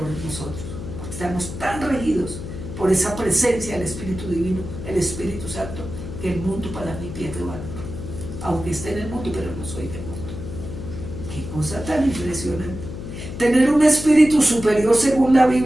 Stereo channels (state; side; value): noise; left; hum, 9 dB below the sound